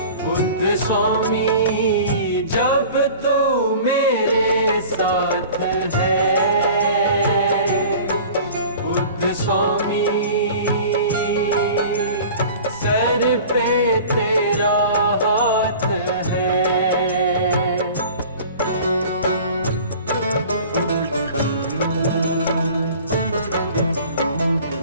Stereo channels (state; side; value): inverted; both; correlation -0.43